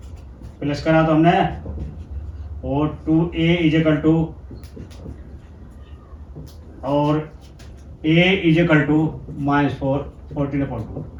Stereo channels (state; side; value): identical; both; correlation 1.00